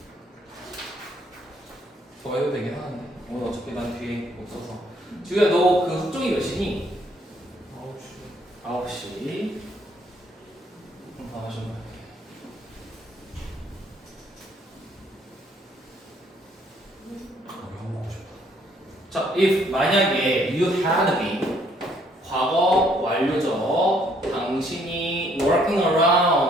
더 해도 되긴 하는데. 오늘 어차피 난 뒤에 없어서. 지우야, 너 그 숙종이 몇 시니? 9시. 그럼 다 마셔봐. 형 먹고 싶다. 자, if 만약에 you had been 과거 완료죠. 당신이 working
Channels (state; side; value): normal; both; correlation 0.66